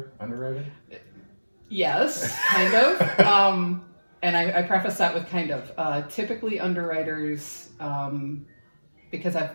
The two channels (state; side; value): inverted; both; correlation -1.00